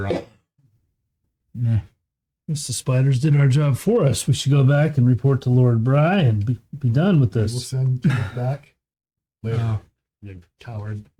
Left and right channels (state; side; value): identical; both; correlation 1.00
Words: on. Nah. Guess the spiders did our job for us. We should go back and report to Lord Bry and be done with We'll this. send you back later. Oh. You coward.